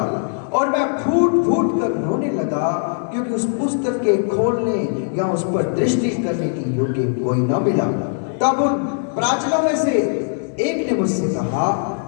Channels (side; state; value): right; silent; digital silence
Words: और मैं फूट फूट कर रोने लगा, क्योंकि उस पुस्तक के खोलने या उस पर दृष्टि करने की योग्य कोई न मिला। तब उन प्राचीनों में से एक ने मुझसे कहा,